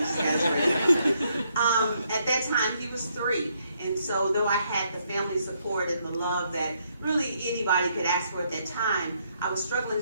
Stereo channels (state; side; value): inverted; both; correlation -0.74